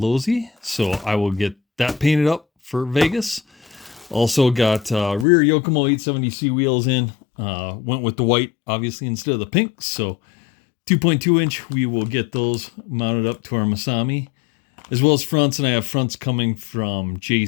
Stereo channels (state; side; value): drops out; right; at 5.2 s